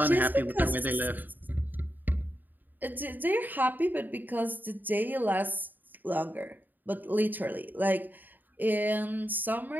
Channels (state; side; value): late; left; 0.088 ms